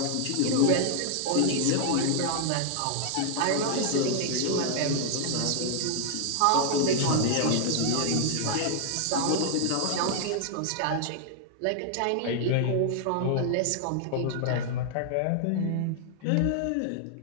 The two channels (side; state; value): both; different; correlation 0.00